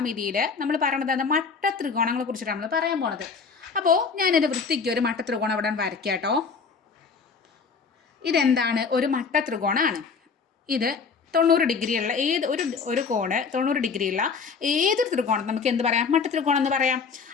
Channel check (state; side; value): quieter; right; 5.4 dB